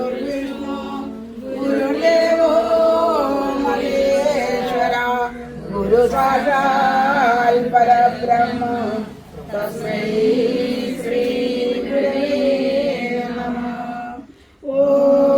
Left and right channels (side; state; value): both; identical; correlation 1.00